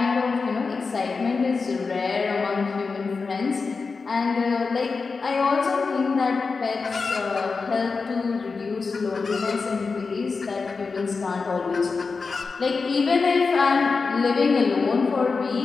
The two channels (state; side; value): quieter; right; 4.6 dB